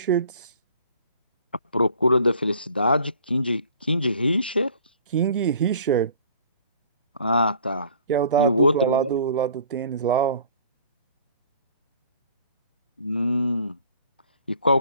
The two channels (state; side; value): inverted; both; correlation -0.51